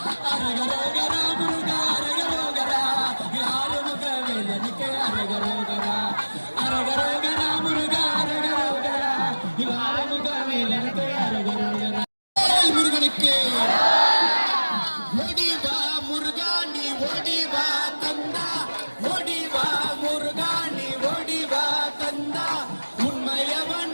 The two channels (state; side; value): inverted; both; correlation -1.00